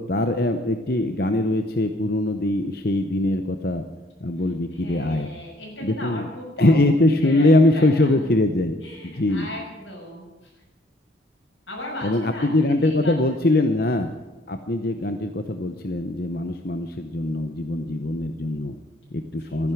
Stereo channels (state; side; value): normal; both; correlation 0.63